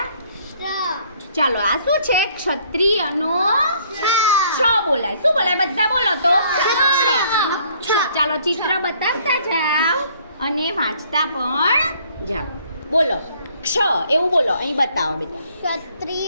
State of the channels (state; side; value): inverted; both; correlation -0.62